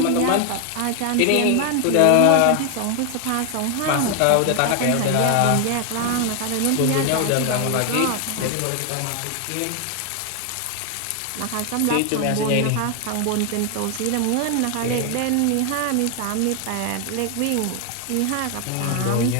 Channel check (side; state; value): both; different; correlation 0.00